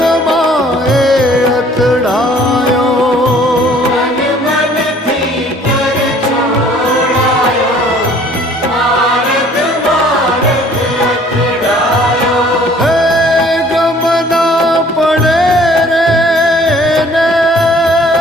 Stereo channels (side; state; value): both; normal; correlation 0.55